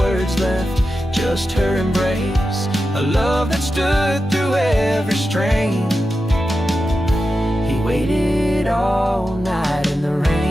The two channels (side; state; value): both; normal; correlation 0.91